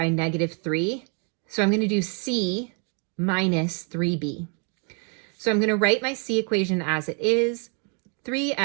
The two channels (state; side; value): quieter; left; 37.5 dB